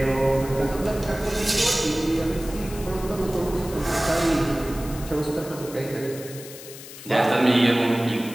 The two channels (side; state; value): left; noise; hiss, 15 dB below the sound